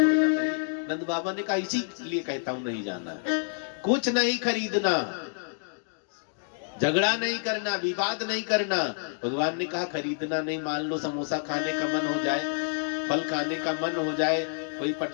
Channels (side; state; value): right; silent; digital silence